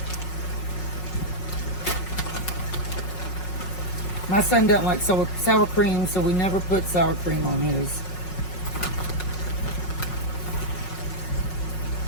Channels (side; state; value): right; late; 5.5 ms